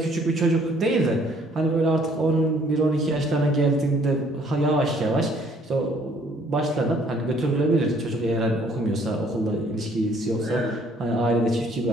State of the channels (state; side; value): normal; both; correlation 0.62